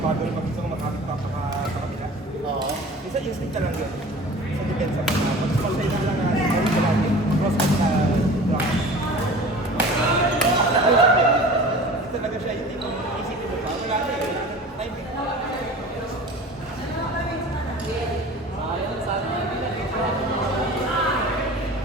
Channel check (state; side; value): normal; both; correlation 0.40